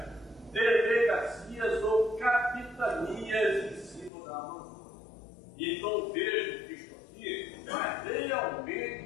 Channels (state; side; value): drops out; right; at 4.1 s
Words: delegacias ou capitanias em cima da Amazônia. Então vejo que isso aqui vai